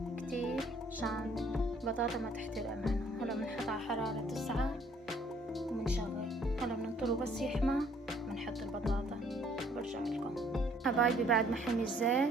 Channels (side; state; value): both; normal; correlation 0.61